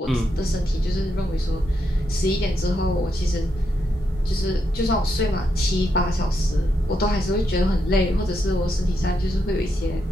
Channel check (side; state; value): both; normal; correlation 0.81